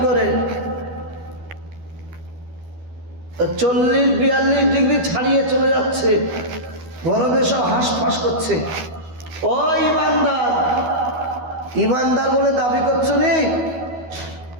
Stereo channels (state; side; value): late; left; 12 ms